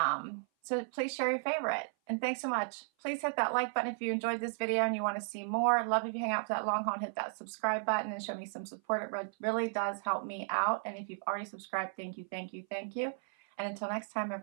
please share your favorite. And thanks so much. Please hit that like button if you enjoyed this video and you want to see more. I'd love if you hang out for that long haul and hit that subscribe button and show me some support. It really does help me out. And if you've already subscribed, thank you, thank you, thank you. And until next time,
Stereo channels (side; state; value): left; silent; 55 dB below the other